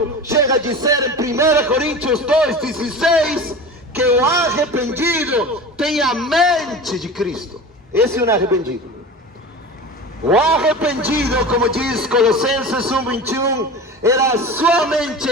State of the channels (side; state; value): both; normal; correlation 0.33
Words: chega a dizer em 1 Coríntios 2:16 que o arrependido tem a mente de Cristo. Esse é um arrependido. O arrependido, como diz Colossenses 1:21, sua mente